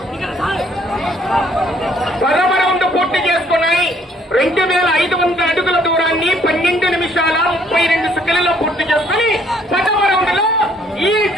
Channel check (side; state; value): both; normal; correlation 0.64